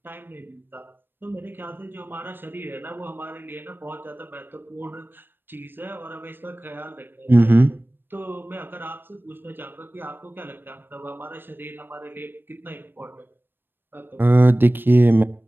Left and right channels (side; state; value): left; late; 0.096 ms